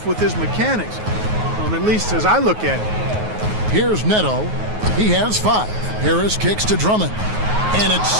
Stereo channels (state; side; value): late; left; 9.4 ms